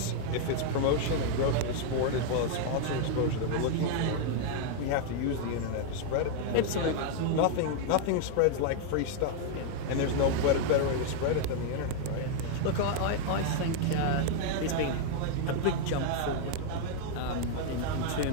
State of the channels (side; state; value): both; different; correlation 0.00